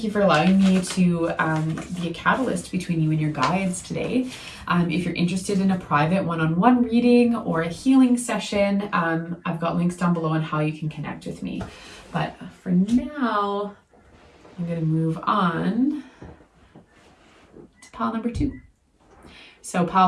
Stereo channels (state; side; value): identical; both; correlation 1.00